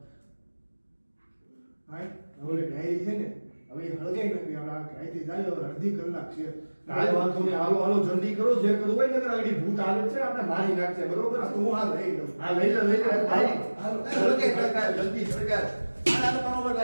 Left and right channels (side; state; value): both; inverted; correlation -1.00